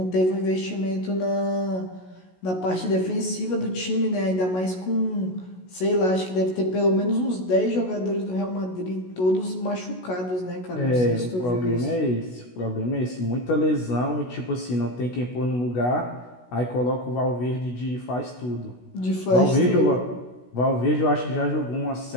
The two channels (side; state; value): right; late; 16 ms